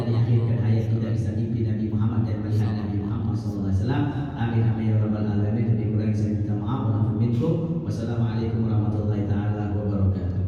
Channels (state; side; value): identical; both; correlation 1.00